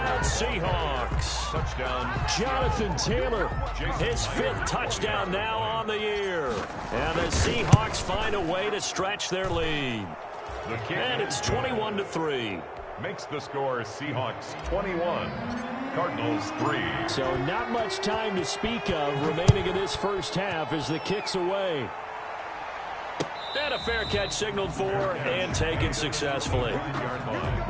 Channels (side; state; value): both; identical; correlation 1.00